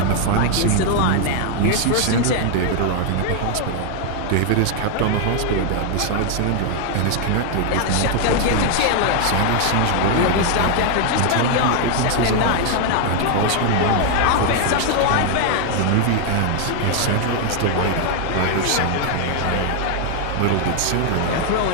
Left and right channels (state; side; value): different; both; correlation 0.00